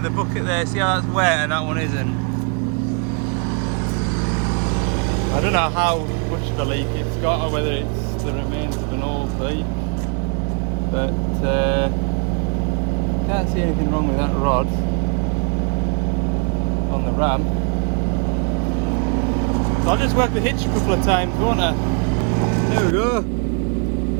the bucket there. See how that's wet and that one isn't. I don't know how much of a leak it's got or whether it's the remains of an old pipe, but can't see anything wrong with that rod on the ram. So I'll just work the hitch a couple of times, won't I? There we go.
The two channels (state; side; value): quieter; left; 39.4 dB